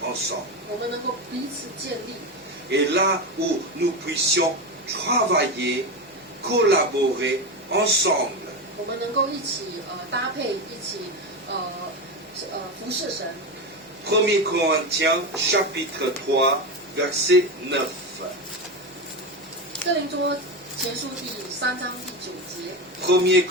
ensemble. 我们能够彼此建立， Et là où nous puissions travailler, collaborer ensemble. 我们能够一起搭配，一起服侍神。 1 Corinthiens chapitre 3 verset 9. 哥林多前书第3章第9节， 1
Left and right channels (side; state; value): both; normal; correlation 0.17